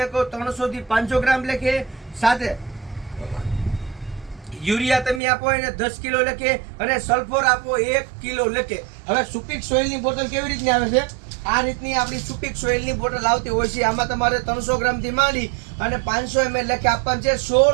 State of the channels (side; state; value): left; drops out; at 5.2 s